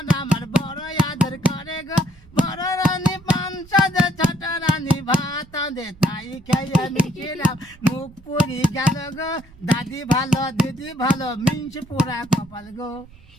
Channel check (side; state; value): right; noise; rumble, 24 dB below the sound